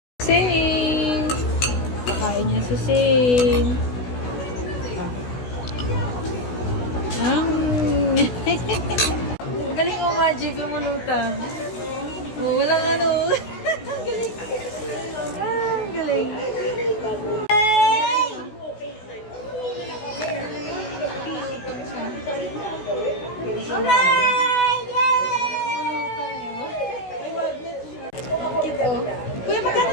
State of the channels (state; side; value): late; right; 16 ms